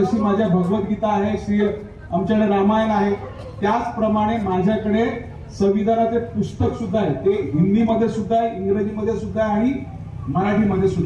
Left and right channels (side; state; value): both; identical; correlation 1.00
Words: माझ्या भगवद्गीता आहे, श्री आमच्याकडे रामायण आहे, त्याचप्रमाणे माझ्याकडे संविधानाचे पुस्तक सुद्धा आहे. ते हिंदीमध्ये सुद्धा आहे, इंग्रजीमध्ये सुद्धा आहे आणि मराठीमध्ये